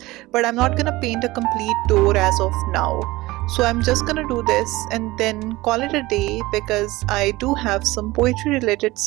but I'm not gonna paint a complete door as of now. So I'm just gonna do this and then call it a day, because I do have some poetry related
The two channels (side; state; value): left; quieter; 19.7 dB